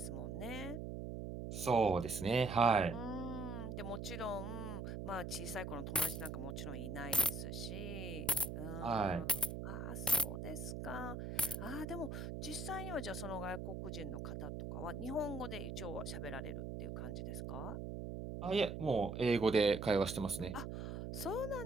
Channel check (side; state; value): right; noise; hum, 5 dB below the sound